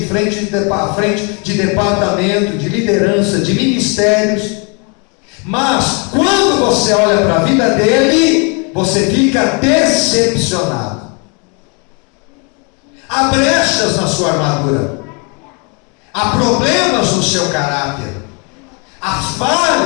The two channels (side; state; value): right; quieter; 34.3 dB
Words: frente de departamento, de liderança, de ministérios, mas quando você olha para a vida dele, você fica decepcionado. Há brechas na sua armadura, há problemas no seu caráter, há